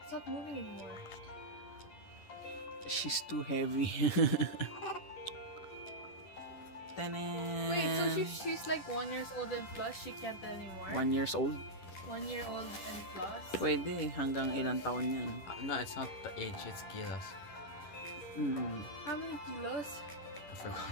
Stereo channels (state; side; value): late; right; 10 ms